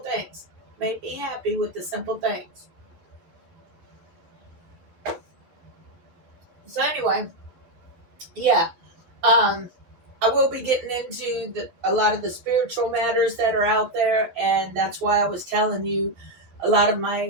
Make me happy with the simple things. So anyway, yeah. I will be getting into a lot of the spiritual matters that are out there, and that's why I was telling you a lot of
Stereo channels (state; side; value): late; left; 12 ms